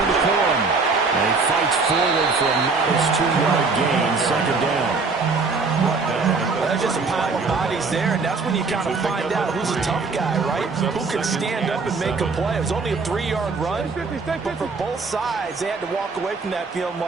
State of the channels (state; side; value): quieter; left; 4.3 dB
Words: to Corum. And he fights forward for a modest 2-yard gain, 2nd down. There's just a pile of bodies there, and that's when you kind of find out who's a tough guy, right? Who can stand up and make a play. It was only a 3-yard run, but for both sides, they had to walk away from that feeling